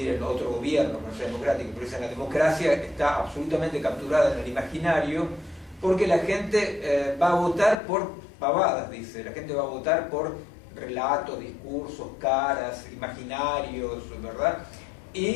otro gobierno que no sea democrático, pero la democracia está absolutamente capturada en el imaginario, porque la gente va a votar por pavadas, dice, la gente va a votar por relatos, discursos, caras, imaginarios, ¿verdad?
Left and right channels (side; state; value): right; drops out; at 7.8 s